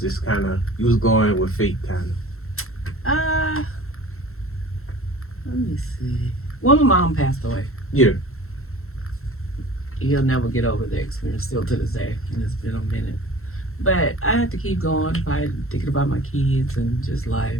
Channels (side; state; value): right; late; 0.62 ms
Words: just kind of, you was going with faith kind of. Let me see. Well, my mom passed away. Yeah. He'll never get over the experience still to this day, and it's been a minute. But I had to keep going, thinking about my kids and just